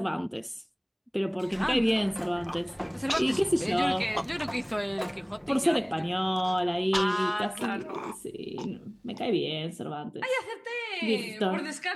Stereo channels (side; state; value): both; identical; correlation 1.00